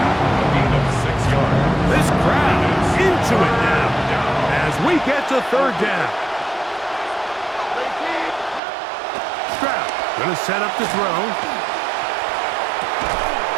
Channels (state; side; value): drops out; left; at 8.6 s